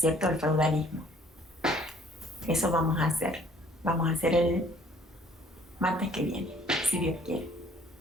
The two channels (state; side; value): normal; both; correlation 0.58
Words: el feudalismo. Eso vamos a hacer. Vamos a hacer el martes que viene, si Dios quiere.